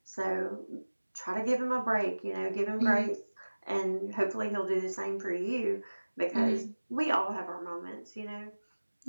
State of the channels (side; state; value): both; inverted; correlation -1.00